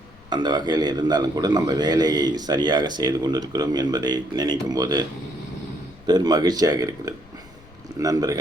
அந்த வகையில் இருந்தாலும் கூட நம்ம வேலையை சரியாக செய்து கொண்டிருக்கிறோம் என்பதை நினைக்கும் போது பெரும் மகிழ்ச்சியாக இருக்கிறது.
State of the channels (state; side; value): noise; left; rumble, 23 dB below the sound